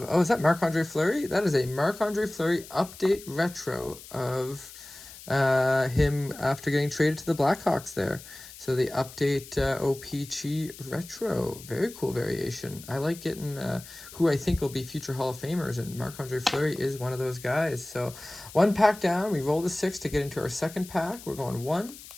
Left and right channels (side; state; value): left; noise; hiss, 17 dB below the sound